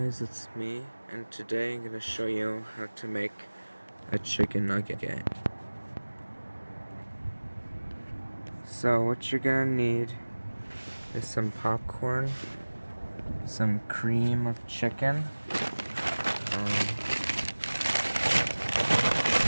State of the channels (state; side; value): inverted; both; correlation -1.00